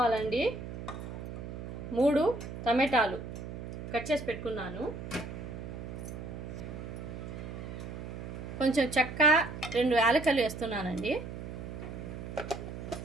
3 టమాటాలు కట్ చేసి పెట్టుకున్నాను. కొంచెం చెక్క, 2 యాలకులు వేస్తున్నానండి.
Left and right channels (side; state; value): right; noise; hum, 8 dB below the sound